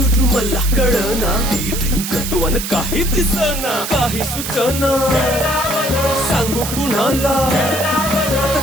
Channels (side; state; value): right; noise; hiss, 5 dB below the sound